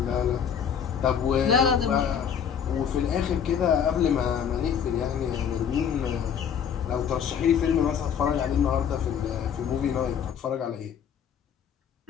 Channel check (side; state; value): right; quieter; 7.9 dB